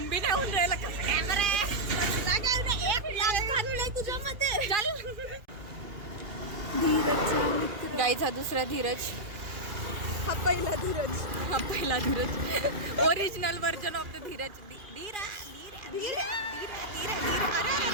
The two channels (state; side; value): late; left; 2.5 ms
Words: बी नाही होऊन राहिला. कसा कॅमेरा आहे चल. गाईचा हा दुसरा धीरज, हा पहिला धीरज. हा पहिला Dheeraj, original version of the Dheeraj. धीरा धीरा धीरा धीरा धीरा धीरा. अरे